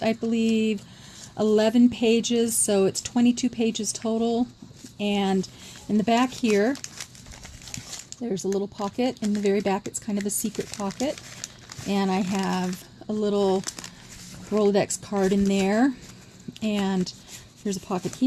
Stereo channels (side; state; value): both; identical; correlation 1.00